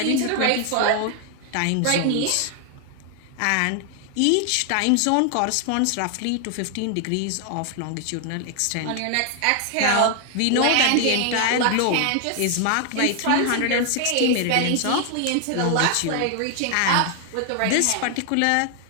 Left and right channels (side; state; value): both; different; correlation 0.00